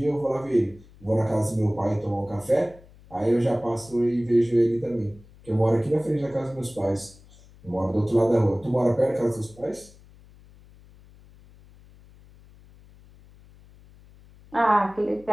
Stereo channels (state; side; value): noise; left; hum, 24 dB below the sound